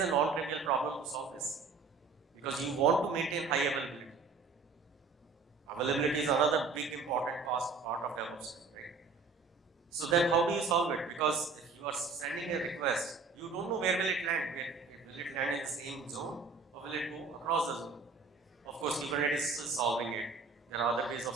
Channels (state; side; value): quieter; left; 4.4 dB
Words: all-critical problem to solve this. Because you want to maintain high availability. Availability is another big important part of DevOps, right? So then how do you solve it? Because if you are sending a request, you don't know where will it land. Will it land in the same zone or will it go across the zone? Of course, Kubernetes is still solving it. There are other ways of